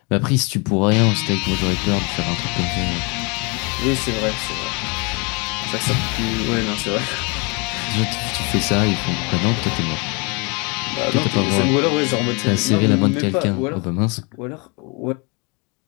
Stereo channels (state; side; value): quieter; right; 31.1 dB